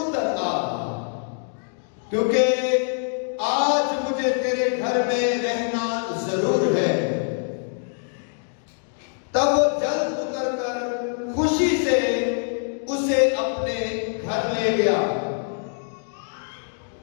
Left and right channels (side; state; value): right; silent; 62 dB below the other